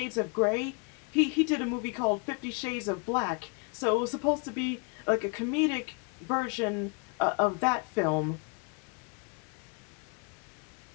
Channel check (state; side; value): quieter; right; 35.2 dB